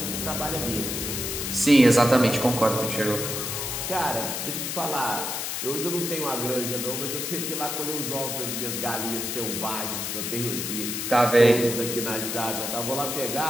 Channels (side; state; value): left; noise; hiss, 3 dB below the sound